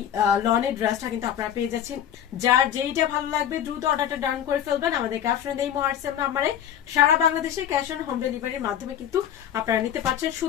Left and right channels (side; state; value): right; quieter; 10.0 dB